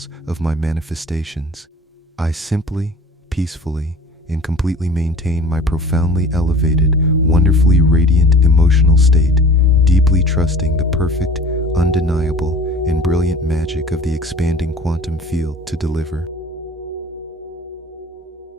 of my manifestations. I simply, peacefully, and completely maintain my profoundly elevated, wonderfully radiant emotional state, deeply trusting the perfect, undeniable, and brilliant magic of the expanding quantum field to deliver.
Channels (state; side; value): normal; both; correlation 0.43